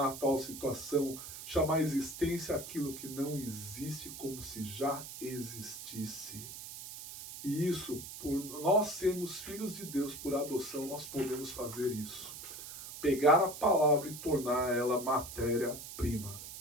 a tal situação, chamar a existência aquilo que não existe como se já existisse. E isso, por nós sermos filhos de Deus por adoção, nós podemos fazer isso. Pegar a palavra e tornar ela matéria-prima.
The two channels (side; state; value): right; noise; hiss, 11 dB below the sound